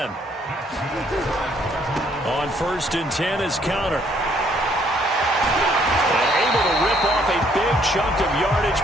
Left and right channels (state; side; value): normal; both; correlation 0.66